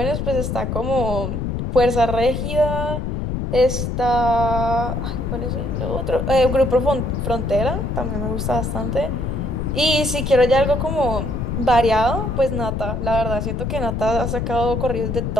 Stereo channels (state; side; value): noise; left; rumble, 2 dB below the sound